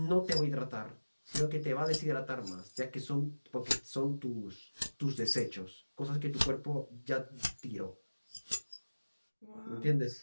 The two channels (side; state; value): both; inverted; correlation -1.00